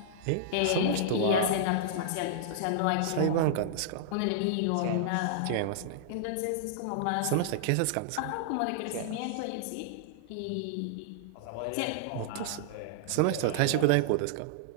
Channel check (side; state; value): both; different; correlation -0.01